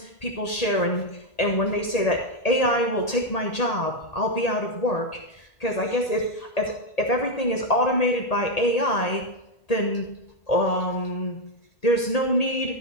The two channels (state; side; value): late; right; 1.8 ms